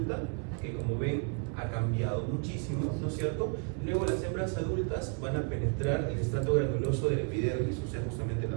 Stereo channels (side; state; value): left; quieter; 36.4 dB